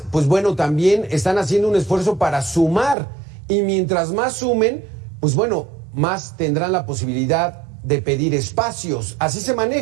pues bueno, también están haciendo un esfuerzo para sumar. y mientras más sumen, pues bueno, más tendrán la posibilidad de pedir espacios. Así se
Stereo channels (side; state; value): left; drops out; at 3.0 s